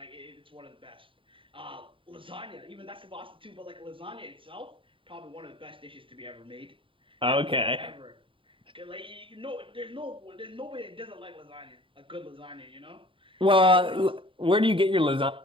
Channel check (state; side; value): late; left; 0.25 ms